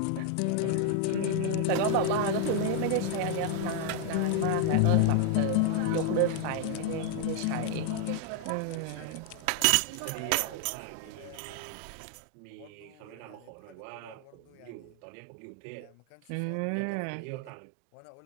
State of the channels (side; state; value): both; different; correlation 0.00